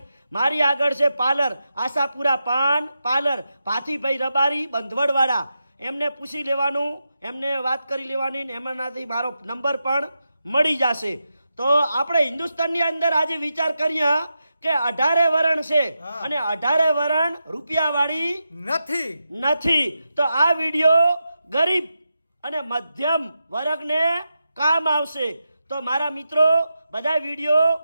મારી આગળ છે પાર્લર આશાપુરા પાન પાર્લર, ભાથીભાઈ રબારી, બંધવડવાડા. એમને પૂછી લેવાનું, એમને વાત કરી લેવાની, ને એમનાથી મારો નંબર પણ મળી જશે. તો આપણે હિન્દુસ્તાનની અંદર આજે વિચાર કરીએ કે 18 વરણ છે, અને 18 વરણ રૂપિયાવાળી નથી. તો આ વિડીયો ગરીબ અને મધ્યમ વર્ગને કામ આવશે. તો મારા મિત્રો બધા વિડીયો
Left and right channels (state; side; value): inverted; both; correlation -0.88